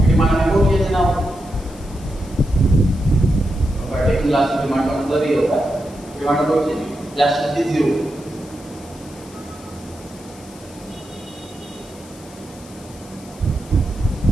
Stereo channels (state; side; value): noise; left; hiss, 22 dB below the sound